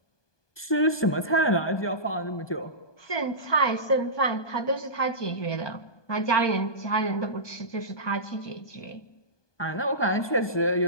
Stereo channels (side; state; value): right; late; 1.2 ms